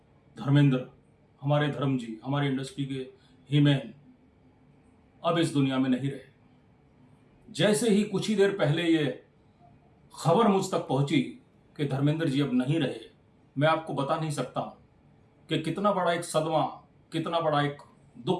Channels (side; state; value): both; identical; correlation 1.00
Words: धर्मेंद्र, हमारे धर्म जी, हमारी इंडस्ट्री के हीमैन अब इस दुनिया में नहीं रहे। जैसे ही कुछ ही देर पहले ये खबर मुझ तक पहुंची कि धर्मेंद्र जी अब नहीं रहे, मैं आपको बता नहीं सकता हूं कि कितना बड़ा एक सदमा, कितना बड़ा एक